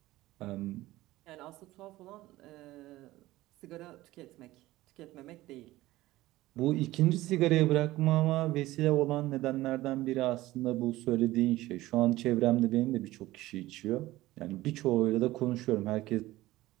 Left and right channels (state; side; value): quieter; left; 17.3 dB